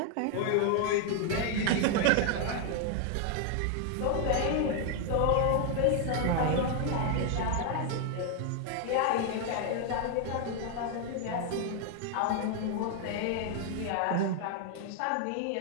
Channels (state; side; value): different; both; correlation 0.00